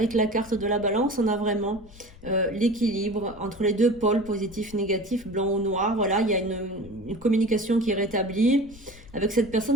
la carte de la balance, on a vraiment l'équilibre entre les deux pôles, positif, négatif, blanc ou noir. Voilà, il y a une communication qui est rétablie avec cette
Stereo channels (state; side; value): noise; left; rumble, 20 dB below the sound